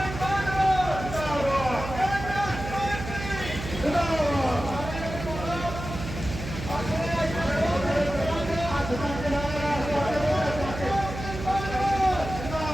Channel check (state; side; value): noise; right; hum, 8 dB below the sound